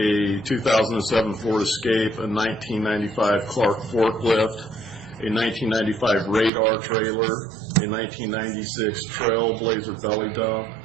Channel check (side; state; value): left; drops out; at 6.5 s